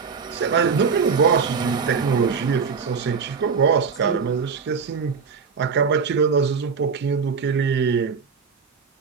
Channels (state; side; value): quieter; left; 5.7 dB